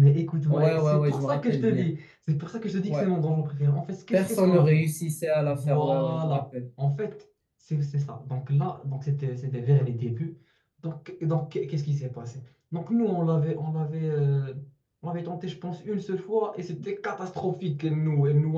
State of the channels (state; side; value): identical; both; correlation 1.00